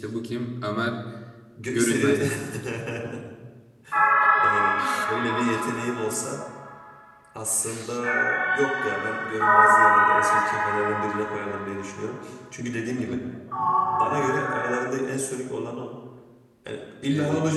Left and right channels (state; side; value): identical; both; correlation 1.00